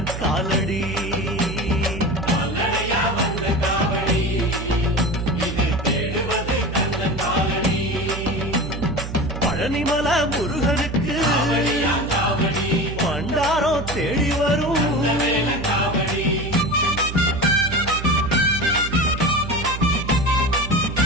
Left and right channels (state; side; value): noise; right; hum, 7 dB below the sound